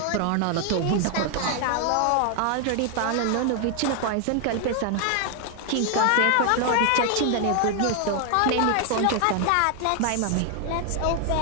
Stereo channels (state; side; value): different; both; correlation 0.00